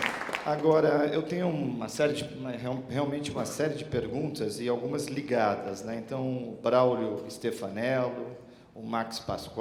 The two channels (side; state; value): both; identical; correlation 1.00